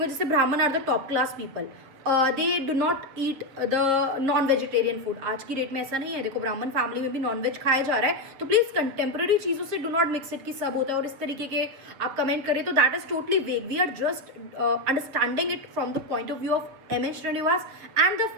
जैसे Brahmin are the top class people, they do not eat the non vegetarian food. आज की डेट में ऐसा नहीं है. देखो, ब्राह्मण फैमिली में भी नॉन वेज खाया जा रहा है. तो प्लीज कंटेम्प्रेरी चीजों से डू नॉट मिक्स इट कि सब होता है और इस तरीके के आप कमेंट करें तो that is totally vague. We are just understanding it from the point of view of M S. Srinivas and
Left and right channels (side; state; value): left; late; 7.7 ms